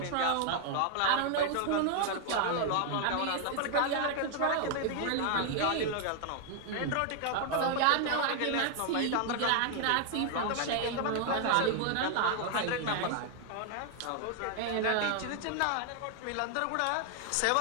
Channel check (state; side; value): different; both; correlation 0.00